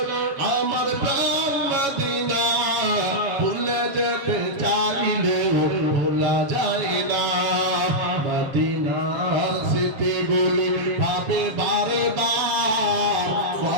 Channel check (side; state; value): left; late; 7.2 ms